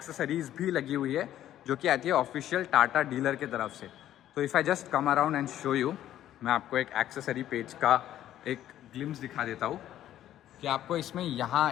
भी लगी हुई है जो कि आती है ऑफिशियल टाटा डीलर की तरफ से। तो if I just come around and show you, मैं आपको एक एक्सेसरी पेज का एक ग्लिम्स दिखा देता हूँ कि आपको इसमें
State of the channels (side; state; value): right; quieter; 12.3 dB